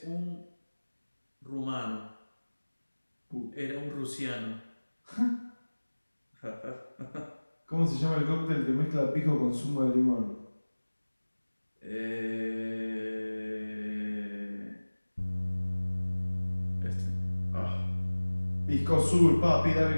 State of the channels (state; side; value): inverted; both; correlation -1.00